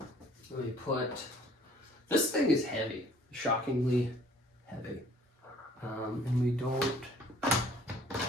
Let me put, this thing is heavy, shockingly heavy. And we don't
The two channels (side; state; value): both; normal; correlation 0.56